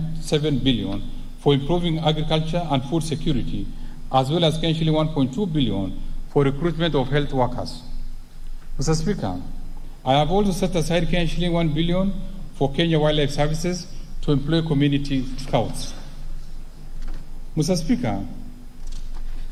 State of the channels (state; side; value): identical; both; correlation 1.00